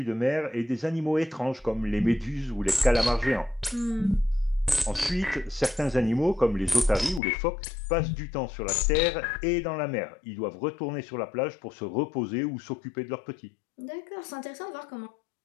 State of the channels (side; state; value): right; drops out; at 7.2 s